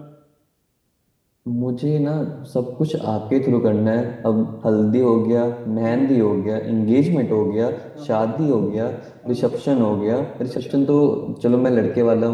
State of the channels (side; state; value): both; identical; correlation 1.00